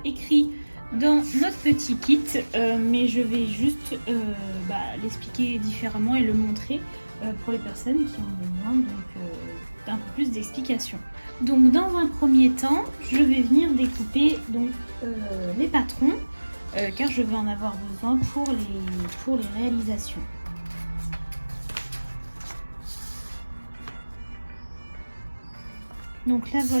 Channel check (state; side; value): inverted; both; correlation -1.00